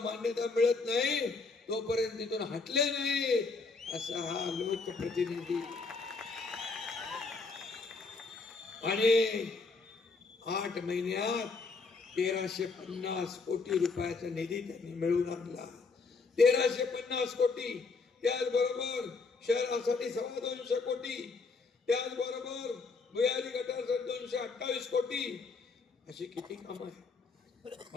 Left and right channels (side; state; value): right; quieter; 4.2 dB